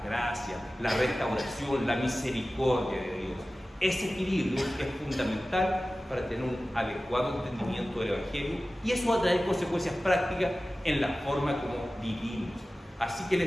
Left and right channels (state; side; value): normal; both; correlation 0.96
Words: gracia, la restauración, la misericordia de Dios. Ese equilibrio es fundamental para tener un adecuado entendimiento del Evangelio y eso va a traer consecuencias prácticas en la forma como vivimos. Así que